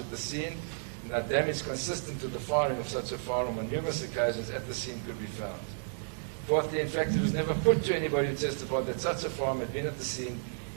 the scene, and no damage consistent with the firing of such a firearm on numerous occasions at the scene could be found. Fourthly, in fact, it was never put to anybody who testified that such a firearm had been at the scene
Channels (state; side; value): silent; left; 56 dB below the other